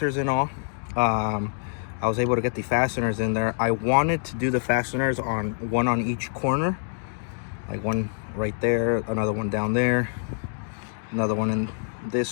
and all. I was able to get the fasteners in there. I wanted to do the fasteners on one on each corner, like one right there, another one down there, another one in this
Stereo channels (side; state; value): right; silent; digital silence